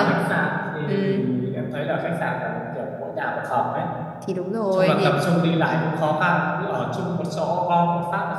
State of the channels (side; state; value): both; identical; correlation 1.00